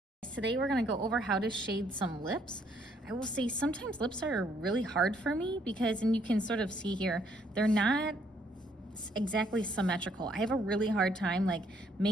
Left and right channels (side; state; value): both; normal; correlation 0.68